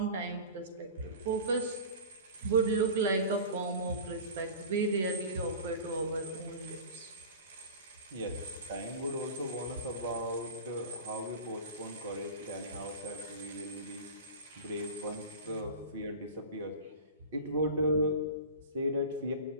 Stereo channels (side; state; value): both; inverted; correlation -0.35